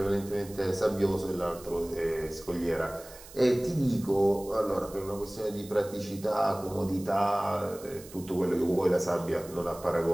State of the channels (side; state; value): right; noise; hiss, 18 dB below the sound